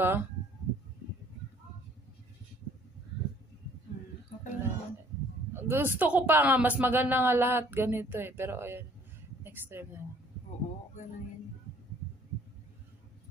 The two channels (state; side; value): normal; both; correlation 0.58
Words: Okay lang. Gusto ko pa nga, mas maganda nga lahat ganito eh. Pero ayan, next time na. Oo, gano'n yun.